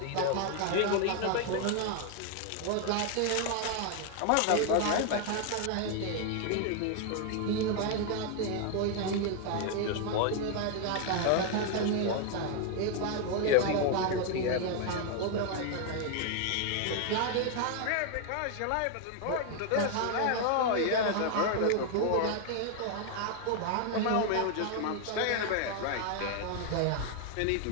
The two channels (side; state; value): both; different; correlation 0.00